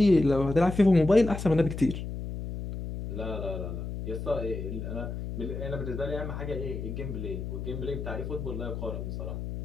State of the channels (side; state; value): left; noise; hum, 6 dB below the sound